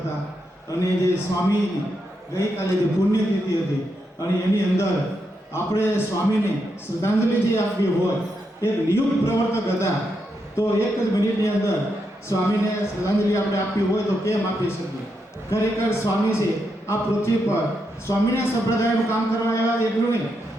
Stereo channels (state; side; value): normal; both; correlation 0.83